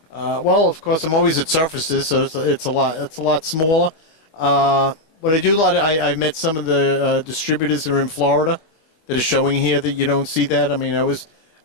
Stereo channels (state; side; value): late; right; 25 ms